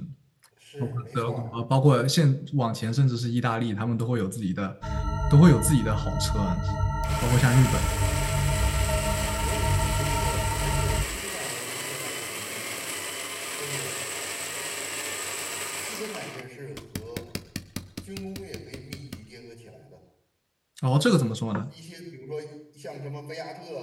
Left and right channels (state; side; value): identical; both; correlation 1.00